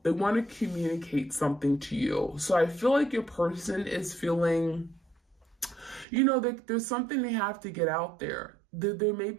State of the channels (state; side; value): drops out; left; at 6.1 s